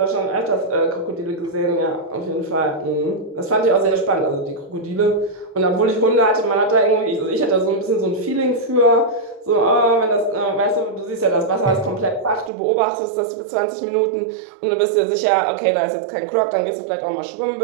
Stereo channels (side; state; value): left; drops out; at 12.5 s